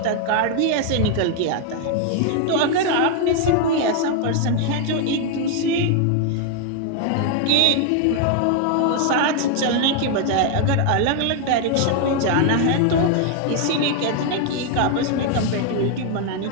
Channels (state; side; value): different; both; correlation 0.00